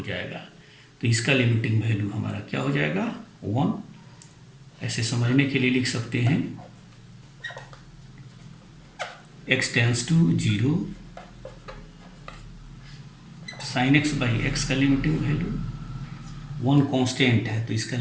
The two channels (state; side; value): identical; both; correlation 1.00